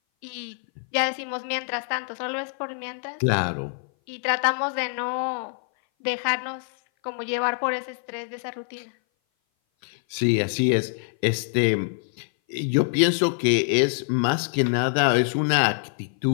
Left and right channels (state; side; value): silent; right; 58 dB below the other